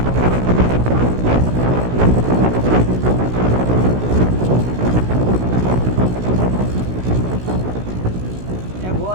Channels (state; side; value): late; left; 16 ms